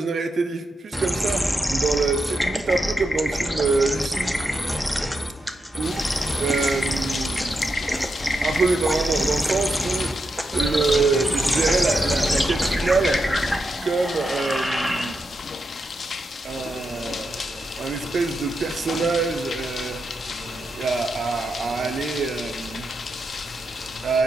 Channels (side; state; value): both; normal; correlation 0.85